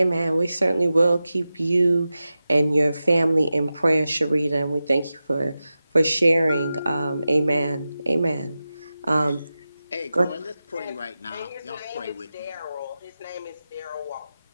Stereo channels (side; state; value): both; inverted; correlation -0.93